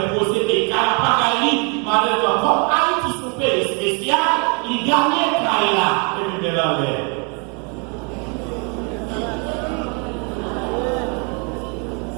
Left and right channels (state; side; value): quieter; left; 35.4 dB